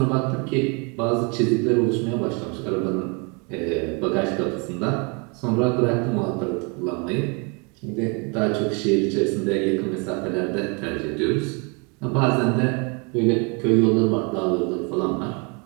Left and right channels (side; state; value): left; quieter; 32.7 dB